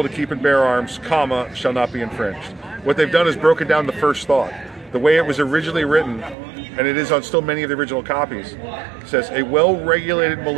to keep and bear arms, comma, shall not be infringed. What they've done is broken down the first thought. The way it was originally written, and it is on still many of the original copies, says, a well-regulated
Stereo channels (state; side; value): drops out; left; at 6.4 s